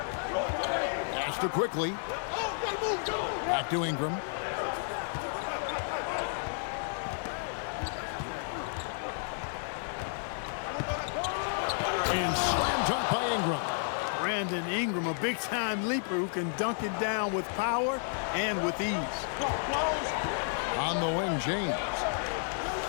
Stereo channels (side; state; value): right; silent; digital silence